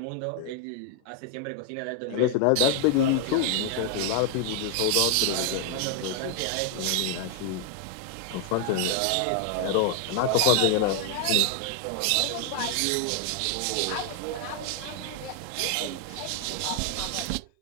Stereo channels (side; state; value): both; different; correlation 0.00